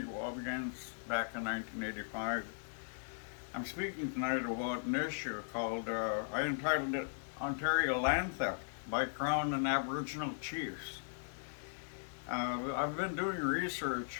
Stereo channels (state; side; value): silent; right; digital silence